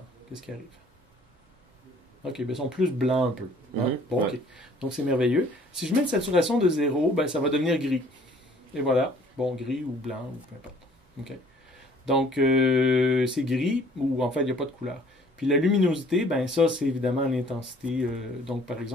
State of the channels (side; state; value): both; normal; correlation 0.56